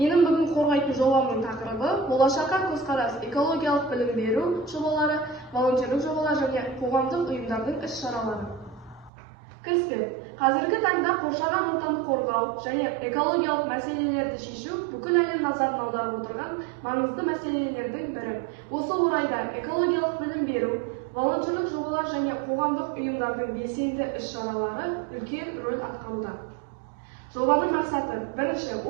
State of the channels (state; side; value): drops out; left; at 9.1 s